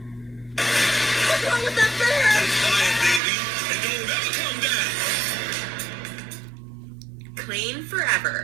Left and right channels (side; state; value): left; drops out; at 3.2 s